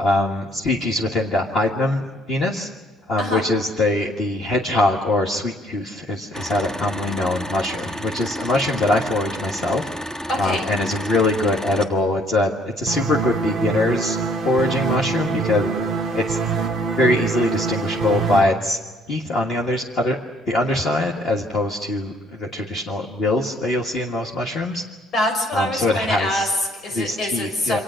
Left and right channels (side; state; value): both; normal; correlation 0.63